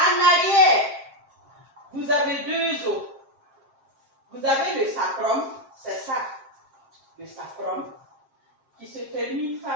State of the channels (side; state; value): left; late; 7.5 ms